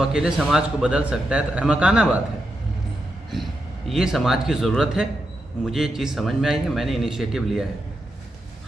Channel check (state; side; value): normal; both; correlation 0.86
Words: अकेले समाज को बदल सकता है तो अहमकाना बात है। ये समाज की ज़रूरत है। मुझे ये चीज़ समझ में आई है, मैंने इनिशिएटिव लिया है।